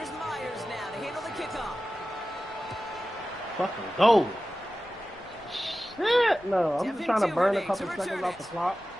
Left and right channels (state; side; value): noise; left; rumble, 26 dB below the sound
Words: Myers now to handle the kickoff. Fucking go. Shit, no. I'm just trying to burn a couple seconds off the clock.